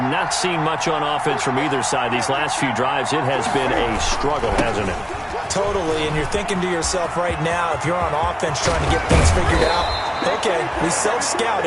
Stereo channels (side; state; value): both; identical; correlation 1.00